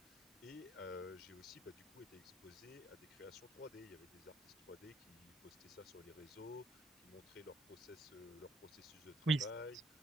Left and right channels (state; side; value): noise; right; hiss, 24 dB below the sound